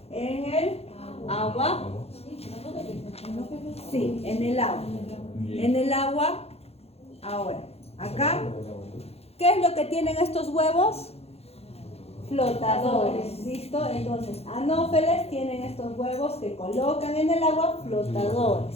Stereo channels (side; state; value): right; late; 0.29 ms